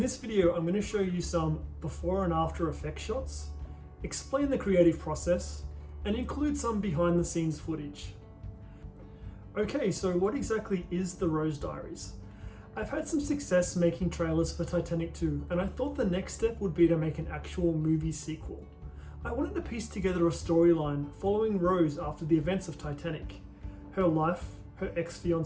video I'm going to show you some before and after effect shots, explain the creative process, and include some behind the scenes footage. Okay, so what exactly is The Rose Diaries? I've had some success making trailers for Titanic 2 and I thought the next step would be to make an actual movie sequel. I wanted to piece together a storyline following Rose after the events of Titanic, her life, her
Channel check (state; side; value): identical; both; correlation 1.00